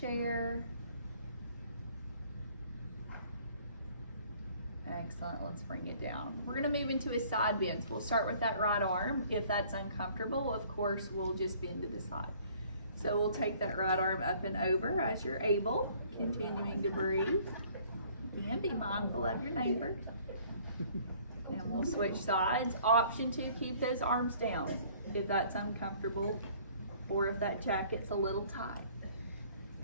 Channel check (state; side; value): inverted; both; correlation -0.56